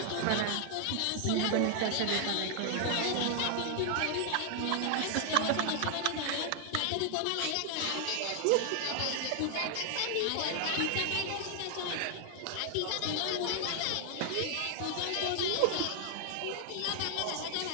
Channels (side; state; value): both; different; correlation 0.00